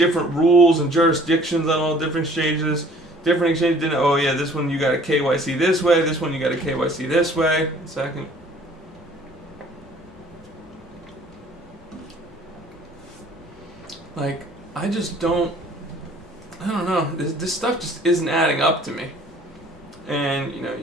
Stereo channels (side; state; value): both; normal; correlation 0.54